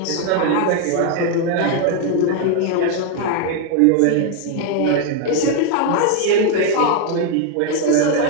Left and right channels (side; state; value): both; different; correlation 0.00